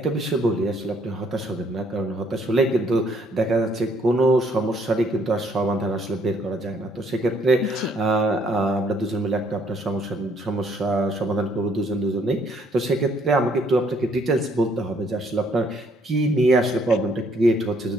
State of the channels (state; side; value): normal; both; correlation 0.66